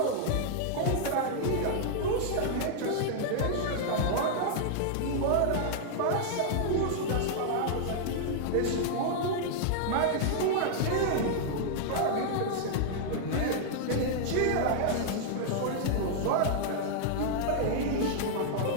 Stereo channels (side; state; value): both; different; correlation -0.01